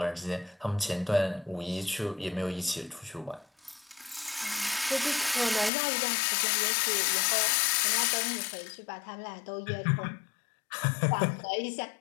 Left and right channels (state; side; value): drops out; right; at 5.7 s